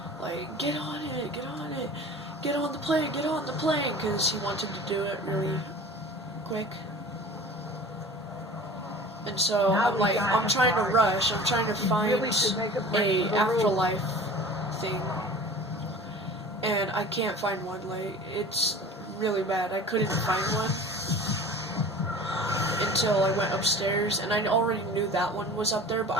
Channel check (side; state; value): both; normal; correlation 0.40